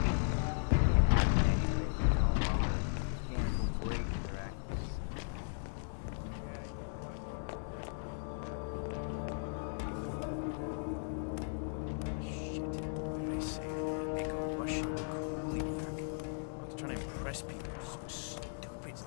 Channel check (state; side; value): silent; right; digital silence